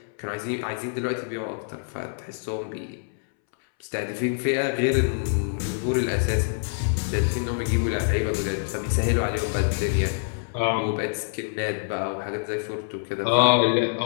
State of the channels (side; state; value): right; silent; 61 dB below the other